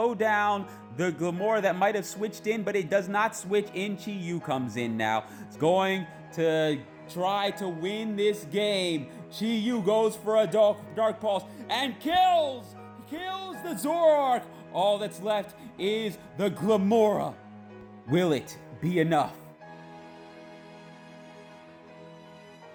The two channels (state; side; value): identical; both; correlation 1.00